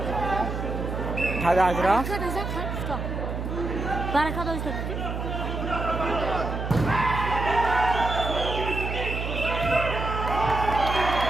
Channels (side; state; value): right; noise; hum, 4 dB below the sound